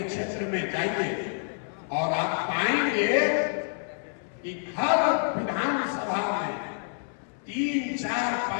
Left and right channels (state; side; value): silent; right; 59 dB below the other